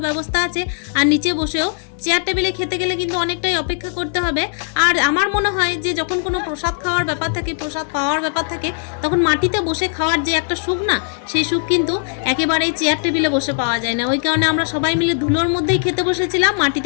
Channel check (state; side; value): silent; right; digital silence